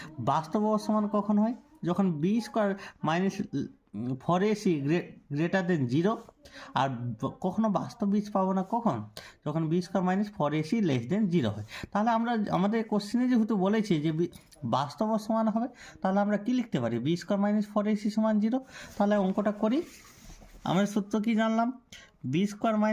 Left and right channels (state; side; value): identical; both; correlation 1.00